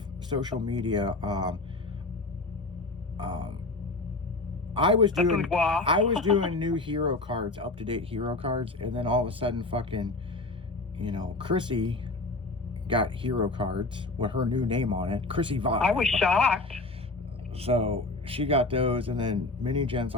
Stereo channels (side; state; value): right; quieter; 3.1 dB